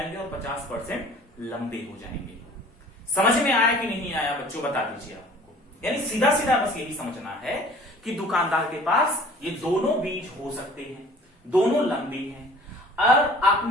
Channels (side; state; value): both; normal; correlation 0.49